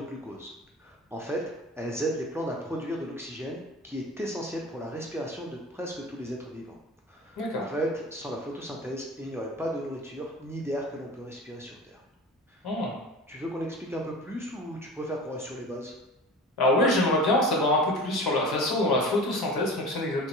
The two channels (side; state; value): both; normal; correlation 0.35